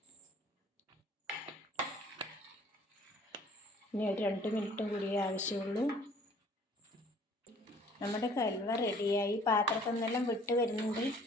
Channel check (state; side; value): normal; both; correlation 0.55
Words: ഇനി ഒരു 2 മിനിറ്റും കൂടിയേ ആവശ്യമുള്ളൂ. നമ്മുടെ ഹൽവ റെഡിയായി. പാത്രത്തിൽ നിന്നെല്ലാം വിട്ട് വരുന്നുണ്ട്.